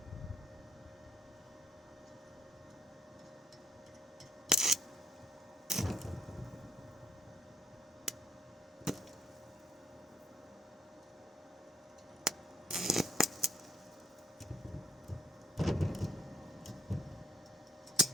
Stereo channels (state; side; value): normal; both; correlation 0.68